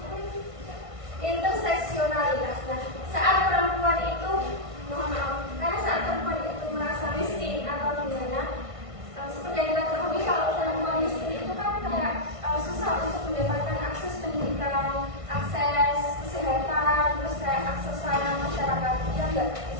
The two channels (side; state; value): left; late; 1.5 ms